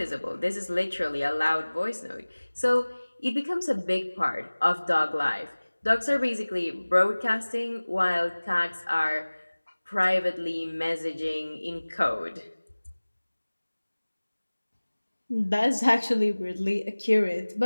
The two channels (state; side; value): inverted; both; correlation -1.00